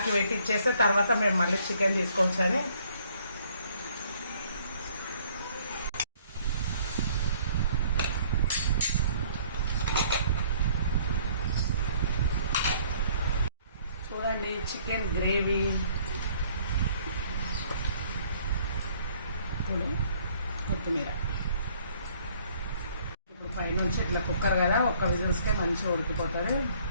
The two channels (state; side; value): inverted; both; correlation -0.60